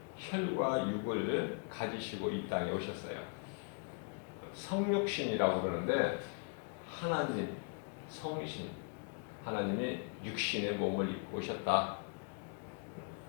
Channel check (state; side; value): quieter; right; 39.7 dB